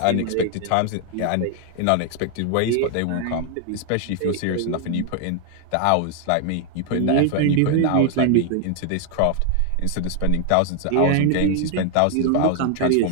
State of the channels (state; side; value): different; both; correlation 0.00